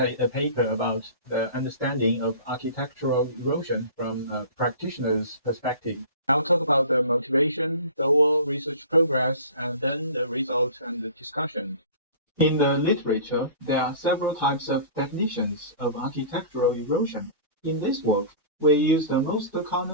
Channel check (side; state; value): both; inverted; correlation -0.40